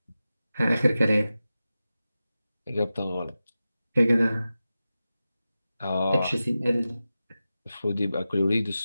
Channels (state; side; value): inverted; both; correlation -0.94